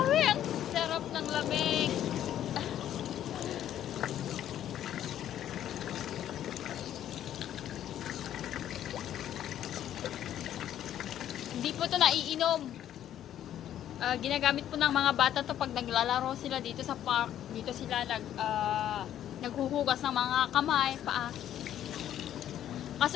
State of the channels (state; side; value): quieter; right; 11.2 dB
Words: Ang sarap ng lamig. Hindi po to naiinom. Ginagamit po ng mga bata to pag naglalaro sila dito sa park. Dito sila naghuhugas ng mga kamay, paa.